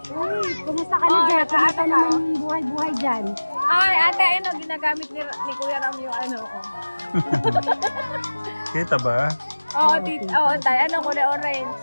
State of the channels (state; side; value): inverted; both; correlation -1.00